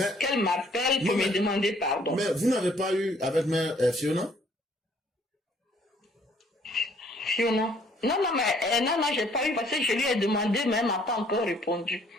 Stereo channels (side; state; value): both; normal; correlation 0.62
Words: qu'elle m'appelle pour me demander pardon. Mais vous n'avez pas eu avec mère Fiona? Fiona? Non, j'ai pas eu parce que je lui ai demandé, mais elle m'a pas encore répondu.